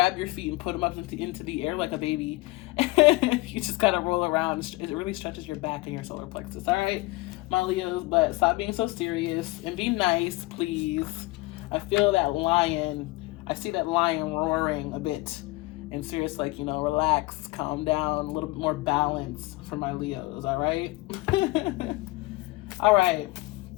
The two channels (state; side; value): quieter; right; 21.5 dB